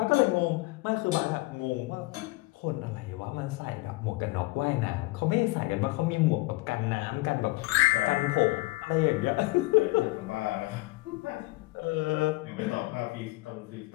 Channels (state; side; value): quieter; right; 22.4 dB